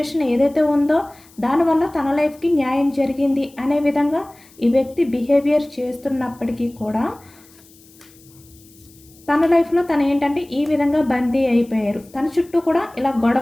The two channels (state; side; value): noise; left; hiss, 27 dB below the sound